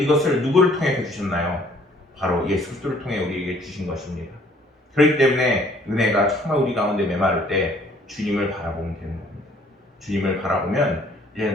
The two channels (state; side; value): normal; both; correlation 0.60